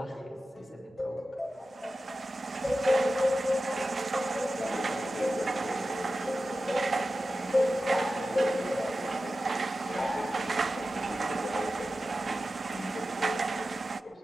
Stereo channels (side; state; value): both; normal; correlation 0.93